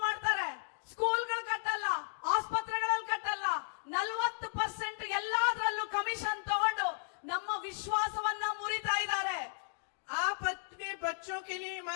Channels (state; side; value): silent; right; digital silence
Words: ಮಾಡ್ತಾರೆ, ಸ್ಕೂಲ್ಗಳು ಕಟ್ಟಲ್ಲ, ಆಸ್ಪತ್ರೆಗಳಲ್ಲಿ ಕಟ್ಟಲ್ಲ, 40% ಎಲ್ಲಾದ್ರಲ್ಲೂ ಕಮಿಷನ್ ತಗೊಂಡು ನಮ್ಮ ವಿಶ್ವಾಸವನ್ನ ಮುರಿತಾ ಇದ್ದಾರೆ। आप अपने बच्चों के लिए